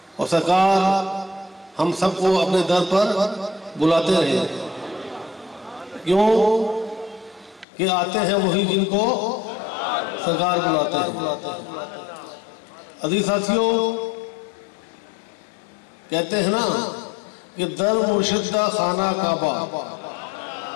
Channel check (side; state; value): right; drops out; at 7.7 s